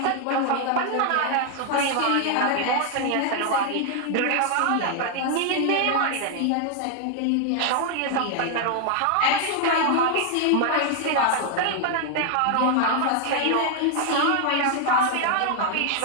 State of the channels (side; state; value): both; different; correlation 0.00